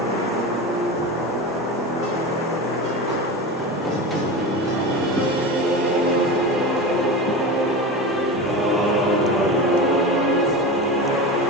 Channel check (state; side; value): normal; both; correlation 0.26